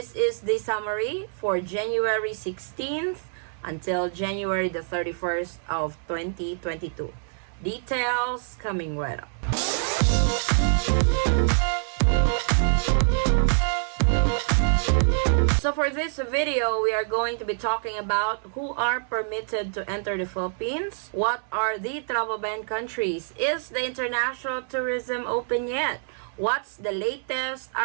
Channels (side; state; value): left; silent; 61 dB below the other